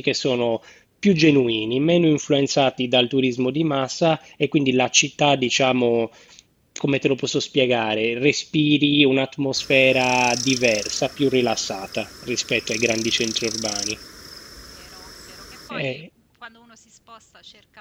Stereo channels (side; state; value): both; identical; correlation 1.00